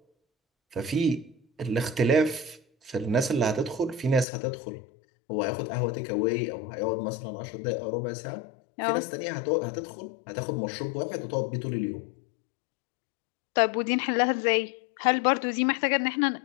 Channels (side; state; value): right; drops out; at 4.2 s